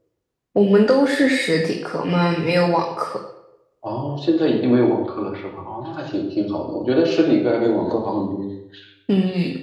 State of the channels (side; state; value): both; identical; correlation 1.00